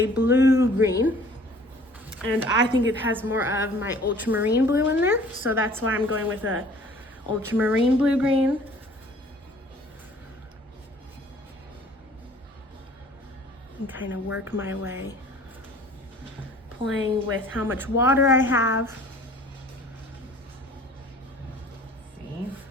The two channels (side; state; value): both; normal; correlation 0.51